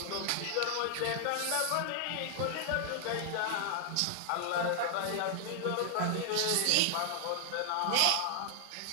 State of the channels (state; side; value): different; both; correlation 0.00